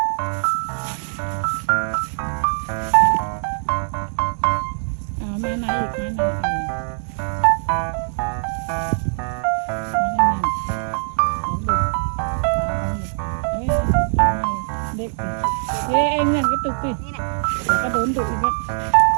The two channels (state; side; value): silent; left; digital silence